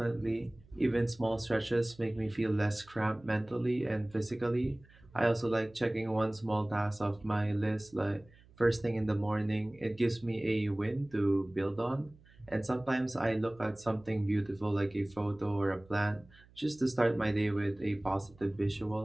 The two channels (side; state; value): right; noise; hum, 26 dB below the sound